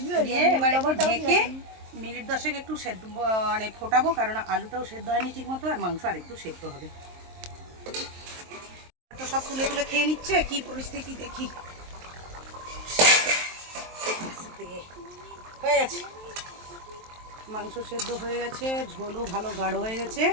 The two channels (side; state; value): left; late; 23 ms